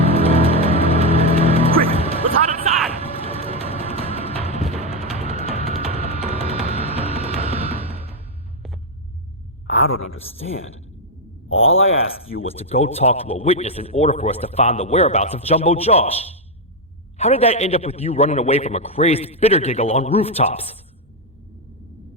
Quick, let's hide inside! I don't understand. All I asked you was to go talk to a witness in order for us to find the whereabouts of Jumbo Josh. How did that end up with you running away from a crazed Bittergiggle on rooftops?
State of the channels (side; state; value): both; normal; correlation 0.03